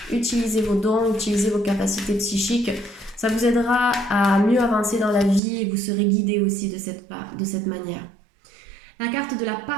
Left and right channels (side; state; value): left; drops out; at 5.4 s